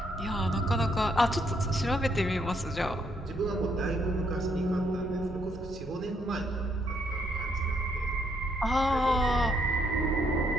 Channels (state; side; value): normal; both; correlation 0.72